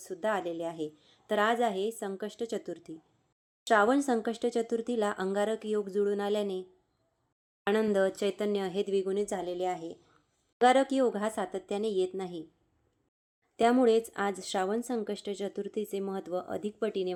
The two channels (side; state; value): both; identical; correlation 1.00